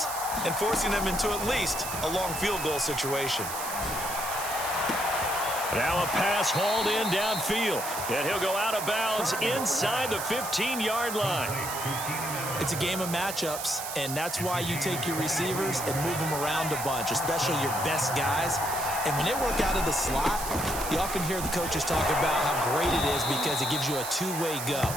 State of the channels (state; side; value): noise; right; hiss, 6 dB below the sound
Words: and forcing them into at least a long field goal situation. Now a pass hauled in downfield, and he'll go out of bounds inside the 15-yard line. It's a game of matchups, and that's why you take your receivers and move them around a bunch, especially your best guys. And when they work out of the slot, you often hear the coaches talk about how great it is because it gives you a two-way go.